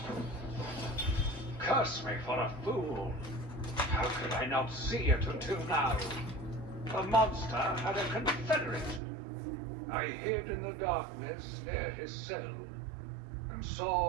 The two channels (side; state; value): left; drops out; at 9.0 s